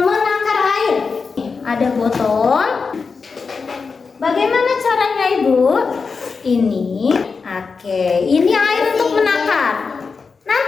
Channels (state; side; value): quieter; right; 4.9 dB